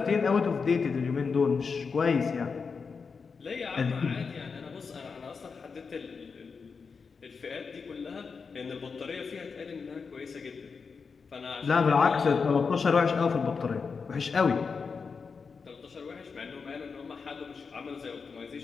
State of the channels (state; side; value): quieter; right; 5.3 dB